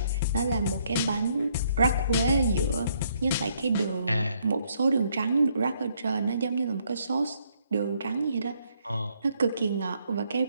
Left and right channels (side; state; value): both; inverted; correlation -0.70